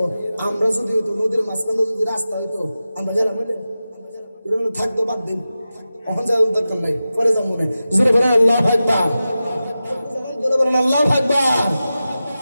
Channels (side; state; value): both; inverted; correlation -0.94